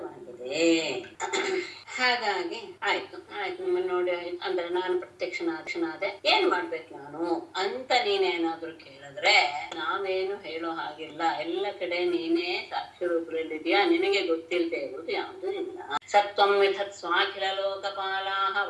ಹಾಗಾಗಿ ಆಯ್ತು ನಿಮ್ಮನ್ನು ನೋಡಿ ಅಂದ್ರೆ ನಾನು ಪ್ರತ್ಯಕ್ಷನಾದೆ, ಏನ್ ಮಾಡ್ಬೇಕು ನಾನು ಅಂತ ನೀನೇನಾದ್ರೂ ಕೇಳಿದ್ರೆ ನಾವೇನು ಹೇಳೋ ಹಾಗಿಲ್ಲ. ಎಲ್ಲ ಕಡೆ ನೀನೇ ಸಾಕ್ಷಿ ರೂಪದಲ್ಲಿದ್ಯಾ, ನಿನಗೆ ಗೊತ್ತಿಲ್ಲದೆ ಇರುವುದು ಯಾವುದೂ ಇಲ್ಲ. ಸತ್ವಂ ವಿಧತ್ ಸ್ವಾಖಿಲ ಲೋಕಪಾಲಾಹ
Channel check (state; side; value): identical; both; correlation 1.00